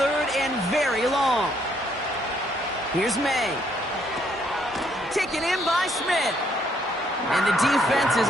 and very long. Here's May. Taken in by Smith. And the defense is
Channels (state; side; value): normal; both; correlation 0.69